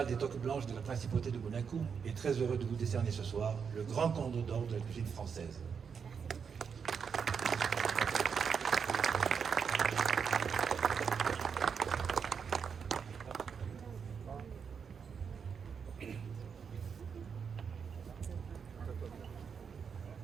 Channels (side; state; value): left; quieter; 6.5 dB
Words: des Toques Blanches de la Principauté de Monaco est très heureux de vous décerner ce soir le grand cordon d'or de la cuisine française.